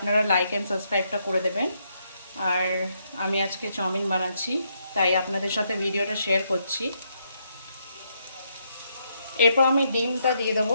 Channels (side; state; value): both; inverted; correlation -0.77